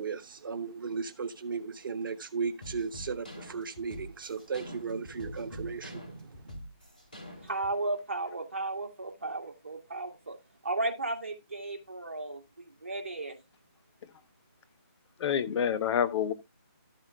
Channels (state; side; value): inverted; both; correlation -0.45